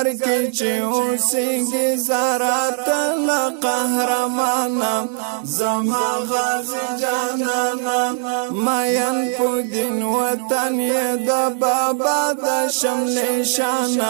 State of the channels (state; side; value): silent; left; 66 dB below the other